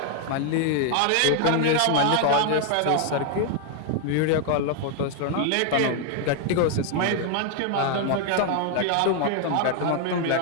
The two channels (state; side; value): different; both; correlation 0.00